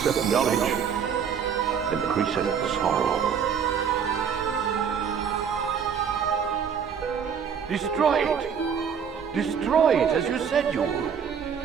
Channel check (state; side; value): quieter; left; 7.3 dB